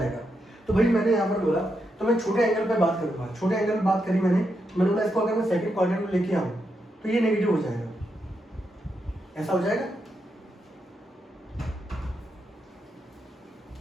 तो भाई मैंने यहाँ पर बोला तो मैं छोटे एंगल पे बात करूंगा, छोटे एंगल पे बात करी मैंने बोला इसको अगर मैं सेकंड क्वाड्रेंट में लेके आऊँ तो ये नेगेटिव हो जाएगा, ऐसा हो जाएगा।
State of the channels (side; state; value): both; normal; correlation 0.83